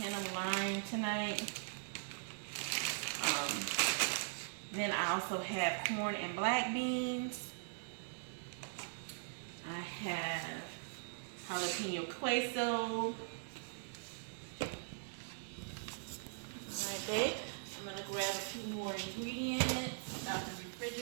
of lime tonight. Then I also have corn and black beans. I have jalapeno queso. Alright, babe. I'm going to grab a few more ingredients out the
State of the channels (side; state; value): left; silent; 51 dB below the other